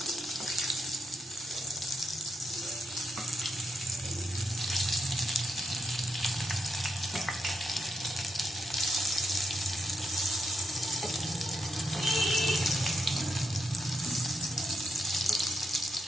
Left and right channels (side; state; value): both; normal; correlation 0.81